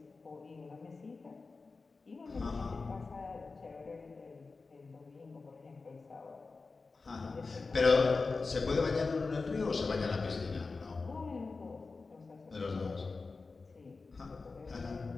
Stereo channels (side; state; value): right; quieter; 4.1 dB